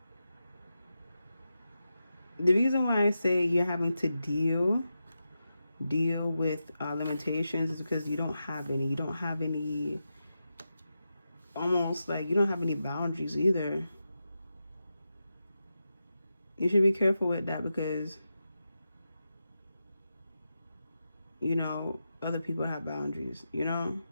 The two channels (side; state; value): both; inverted; correlation -0.89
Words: the reason why I say you're having to deal with limitations is because you don't have any almost like you don't have any boundaries either. You should be careful with that because, you know, other people have boundaries, you know?